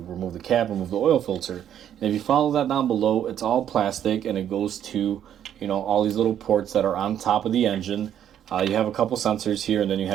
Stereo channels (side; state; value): left; quieter; 10.1 dB